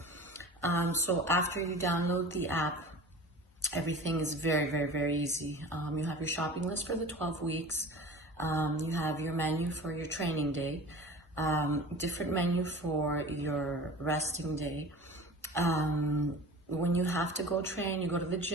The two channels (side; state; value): both; normal; correlation 0.37